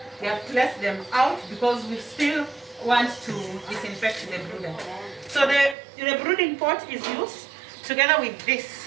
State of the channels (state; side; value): drops out; left; at 5.8 s